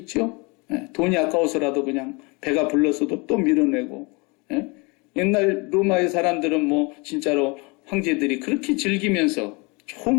네. 돈이 아까워서라도 그냥 배가 불렀어도 또 밀어내고. 네. 옛날 로마의 사람들은 뭐 진짜로 황제들이 그렇게 즐기면서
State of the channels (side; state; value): right; quieter; 28.5 dB